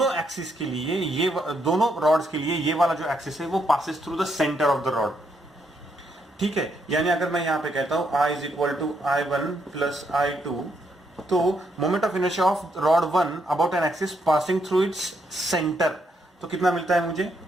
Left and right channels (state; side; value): normal; both; correlation 0.77